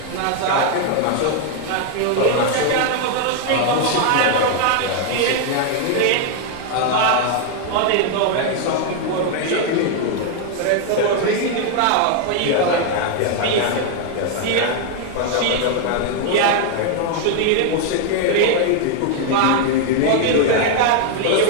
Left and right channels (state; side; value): different; both; correlation 0.01